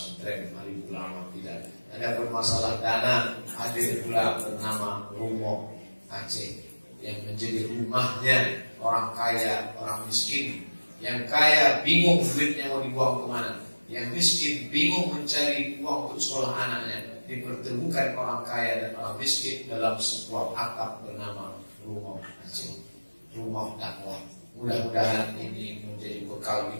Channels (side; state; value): both; inverted; correlation -1.00